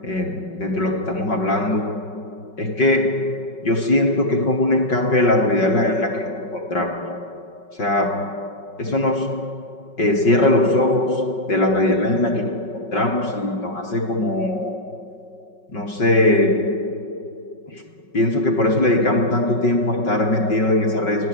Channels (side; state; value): right; late; 5.4 ms